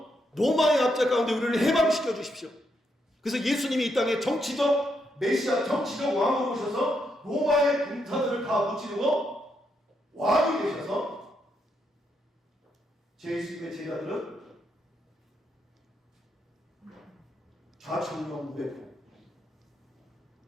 로마의 압제 가운데 우리를 해방시켜 주십시오. 그래서 예수님이 이 땅에 정치적 메시아, 정치적 왕으로 오셔서 로마의 군사들을 다 무찌르고 왕이 되셔서 예수님의 제자들은 좌청명 무배포,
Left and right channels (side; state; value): both; normal; correlation 0.79